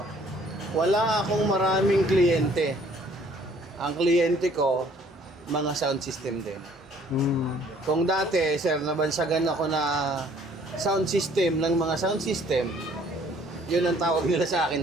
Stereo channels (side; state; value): both; normal; correlation 0.59